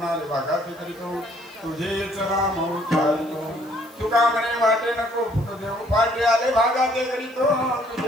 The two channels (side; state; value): left; noise; hiss, 29 dB below the sound